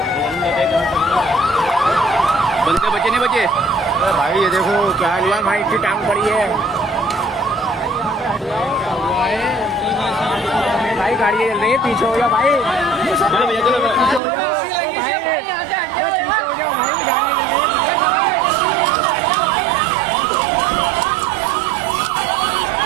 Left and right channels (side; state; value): left; drops out; at 14.2 s